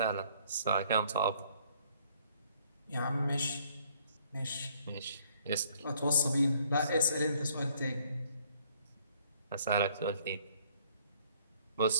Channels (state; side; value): inverted; both; correlation -0.62